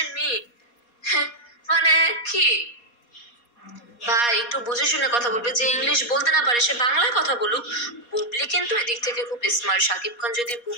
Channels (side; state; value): right; late; 4.2 ms